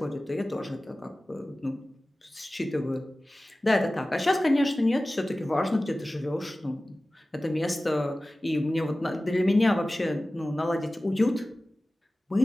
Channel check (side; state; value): both; normal; correlation 0.97